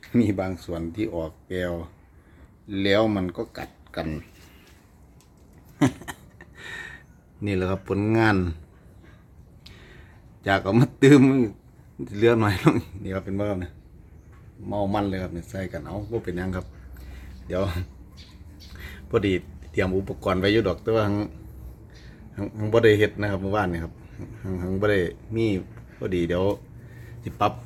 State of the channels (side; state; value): both; identical; correlation 1.00